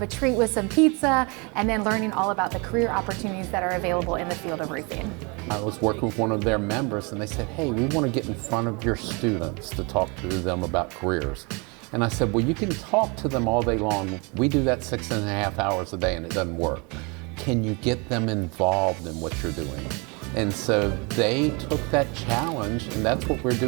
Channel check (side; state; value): left; quieter; 30.3 dB